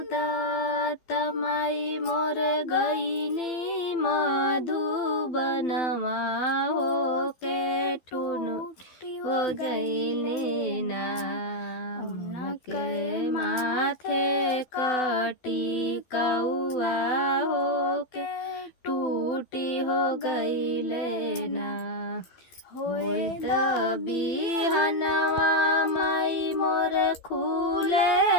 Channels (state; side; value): late; right; 12 ms